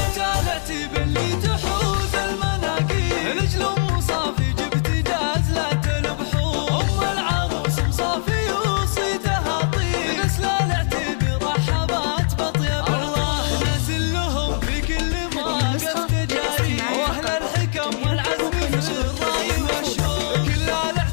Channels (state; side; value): silent; right; digital silence